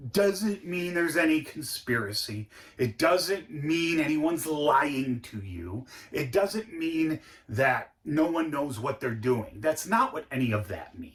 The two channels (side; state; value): both; identical; correlation 1.00